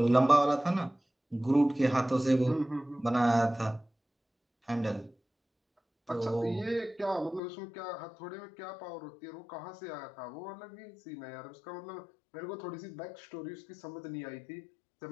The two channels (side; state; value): right; drops out; at 7.4 s